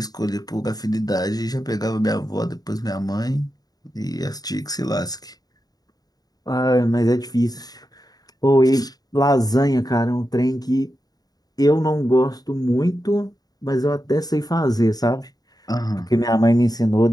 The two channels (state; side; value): late; right; 0.19 ms